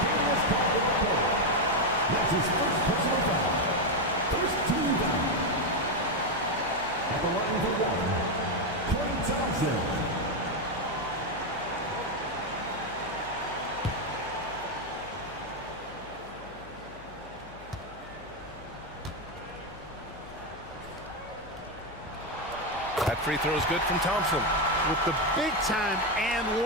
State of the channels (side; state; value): left; noise; hum, 20 dB below the sound